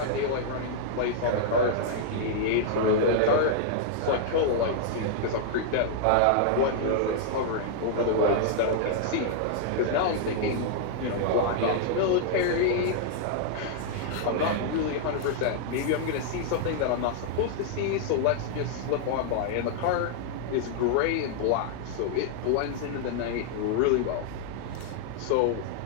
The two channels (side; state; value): both; different; correlation -0.01